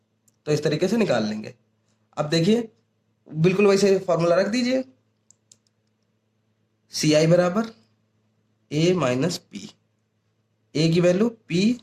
तो इस तरीके से निकाल लेंगे। अब देखिए बिल्कुल वैसे फॉर्मूला रख दीजिए, सी आई बराबर ए माइनस पी, ए की वैल्यू पी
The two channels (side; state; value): both; identical; correlation 1.00